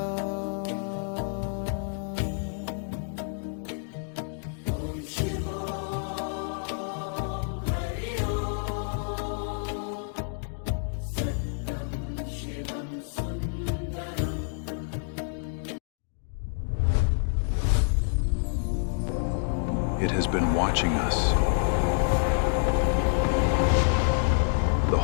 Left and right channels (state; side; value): silent; right; digital silence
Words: It has been watching us the